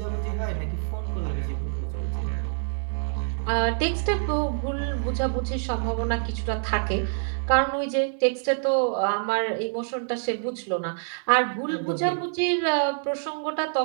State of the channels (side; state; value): left; silent; digital silence